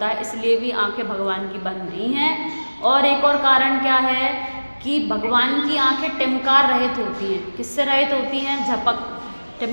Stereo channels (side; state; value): both; inverted; correlation -1.00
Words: है। इसलिए भी आंखें भगवान की बंद नहीं हैं। और एक और कारण क्या है कि भगवान की आंखें टिमकार रहित होती हैं। किससे रहित होती हैं? झपक।